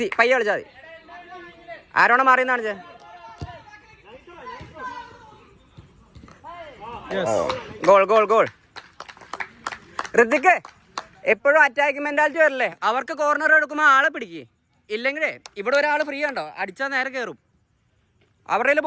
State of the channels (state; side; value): identical; both; correlation 1.00